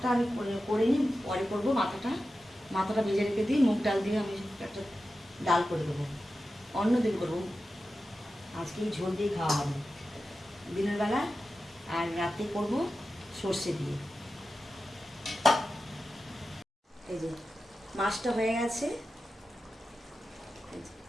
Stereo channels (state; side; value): normal; both; correlation 0.92